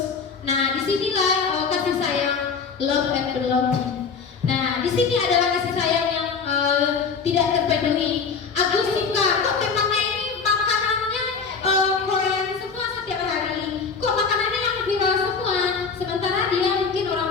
Nah, disinilah kasih sayang, love and belonging. Nah, di sini adalah kasih sayang yang tidak terpenuhi. Agus suka, kok temannya ini makanannya Korean semua setiap hari. Kok makanannya yang viral semua? Sementara dia mungkin orang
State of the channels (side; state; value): right; quieter; 5.4 dB